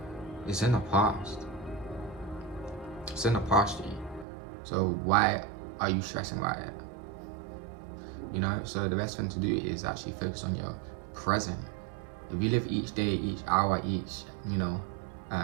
it's in the past. It's in the past, G. So why are you stressing about it? You know, so the best thing to do is actually focus on your present. If you live each day, each hour, each,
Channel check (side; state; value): left; drops out; at 4.2 s